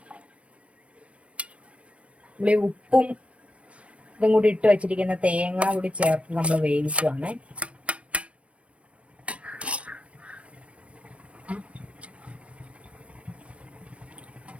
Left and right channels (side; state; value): left; late; 0.062 ms